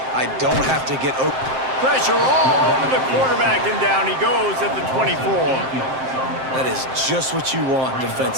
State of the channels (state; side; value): late; left; 7.6 ms